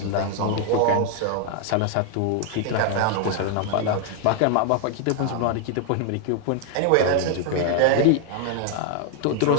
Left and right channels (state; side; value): different; both; correlation 0.00